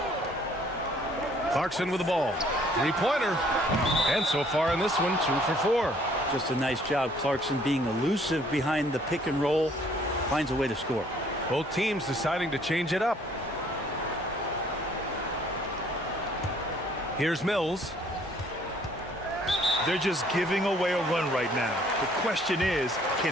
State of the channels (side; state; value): both; normal; correlation 0.60